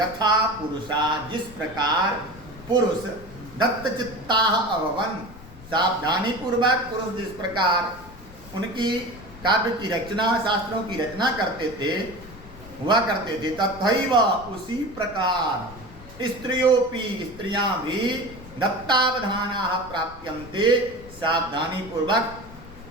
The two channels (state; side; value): noise; left; rumble, 18 dB below the sound